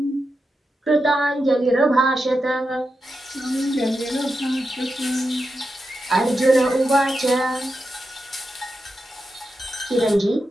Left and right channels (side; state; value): both; normal; correlation 0.88